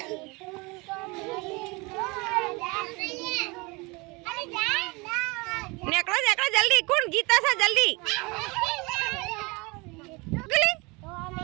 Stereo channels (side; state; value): left; quieter; 26.3 dB